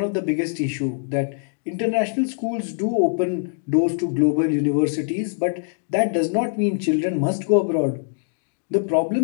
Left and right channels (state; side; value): silent; right; digital silence